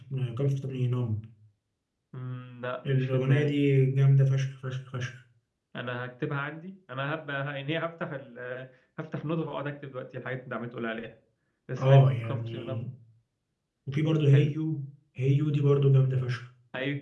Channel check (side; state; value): both; identical; correlation 1.00